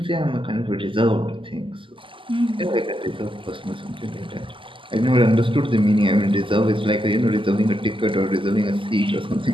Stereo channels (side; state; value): left; late; 0.25 ms